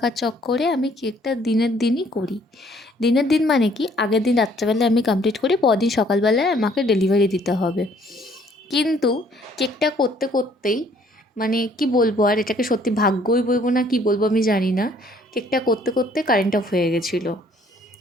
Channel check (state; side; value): normal; both; correlation 0.61